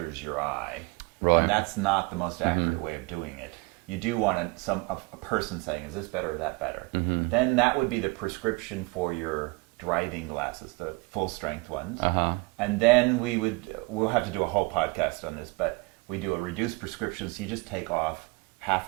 your eye. Right. And that's not the most accurate way of doing it. You do want a person saying, "is this better or that better?" Then that would be the prescription for your driving glasses, the full strength ones. And then we'll have to do a whole podcast on this, but we do a reduced prescription, so you just take off half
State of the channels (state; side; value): quieter; left; 26.3 dB